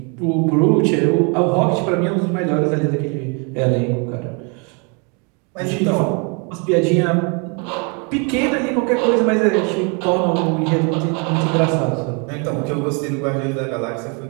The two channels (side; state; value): left; quieter; 34.5 dB